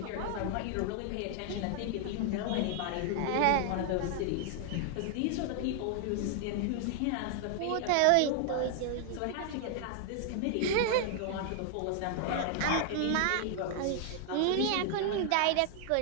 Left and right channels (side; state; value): both; different; correlation 0.00